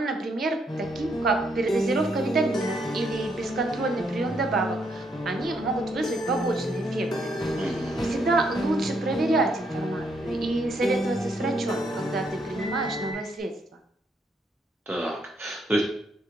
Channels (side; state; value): both; normal; correlation 0.74